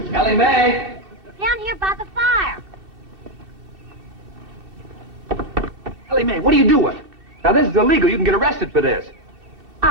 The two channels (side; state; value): left; late; 2.7 ms